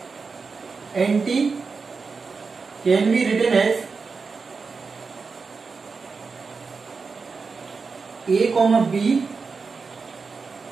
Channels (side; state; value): left; quieter; 4.8 dB